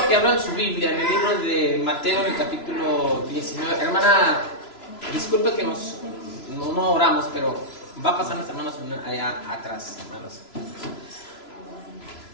que abran su Biblia en el libro de Mateo, en el capítulo 19. Hermana, disculpe que no oramos, pero va a pasar las hermanas allá atrás, hermanos.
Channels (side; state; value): right; late; 3.0 ms